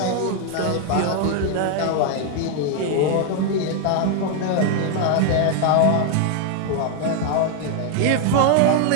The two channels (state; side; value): different; both; correlation 0.00